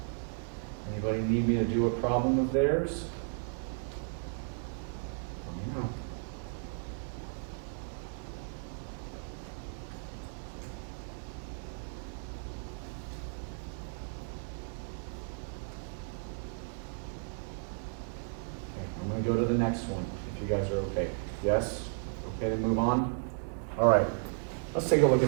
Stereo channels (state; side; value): silent; left; 55 dB below the other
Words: Anybody need me to do a problem of theirs? No. I'm going to go to the next one, if you guys are okay. Yes? Okay to move on? All right. Let's take a look